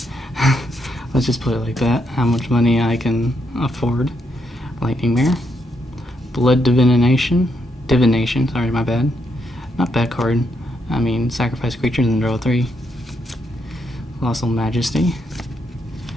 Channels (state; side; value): normal; both; correlation 0.78